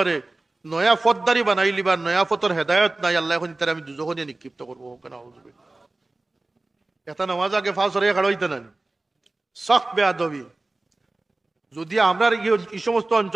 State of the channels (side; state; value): left; quieter; 3.0 dB